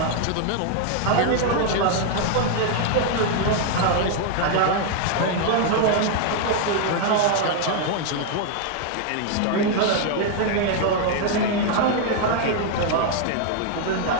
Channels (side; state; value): both; different; correlation 0.00